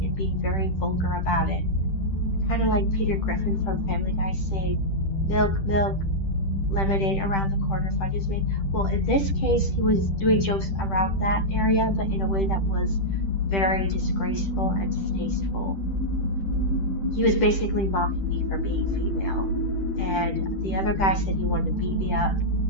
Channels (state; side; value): late; right; 10 ms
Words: and being very vulgar about it. Kind of like Peter Griffin from Family Guy saying, "Milk, milk, lemonade around the corner, fudge is made." Well, in this case, he was doing jokes around that area, but in a way that was very disgraceful and distasteful. He was basically mocking me for being female. And the other guy said he wanted to beat me up